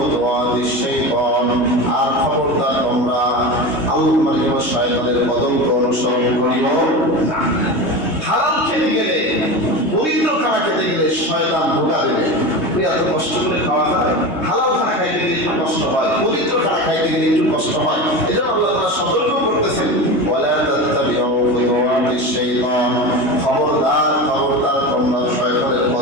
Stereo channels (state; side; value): late; right; 3.2 ms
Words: শাইতান আর খবরদার তোমরা আল্লাহর শয়তানের পদঙ্ক অনুসরণ করিও না। হালাল খেতে গেলে, পবিত্র খানা খেতে গেলে শয়তান ধোঁকা দেবে। তুই এত কষ্ট করে খাওয়া যায়, হালাল খানা খাইতে গেলে একটু কষ্ট হয়, পবিত্র খানা খাইতে গেলে একটু কষ্ট হয়। এই জন্য আল্লাহ তাআলা সতর্ক করতেছেন, ওয়ালা তাত্তাবিউ খুতুওয়াতিশ শাইতান খবরদার খবরদার তোমরা শয়তানের